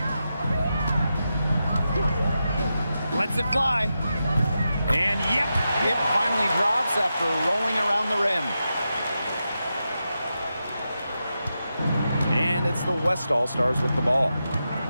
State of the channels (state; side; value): inverted; both; correlation -0.89